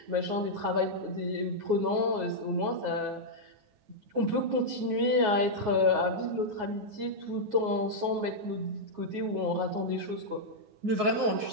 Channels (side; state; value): left; late; 9.5 ms